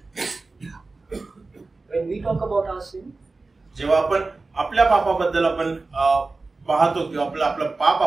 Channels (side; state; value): left; quieter; 3.6 dB